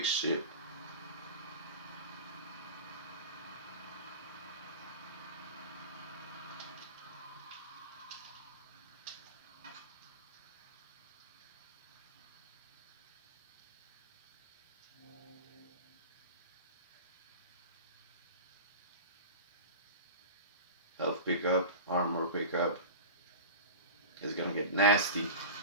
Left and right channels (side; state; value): both; inverted; correlation -0.32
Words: ship? Health pickup, armor pickup. It's gonna get nasty.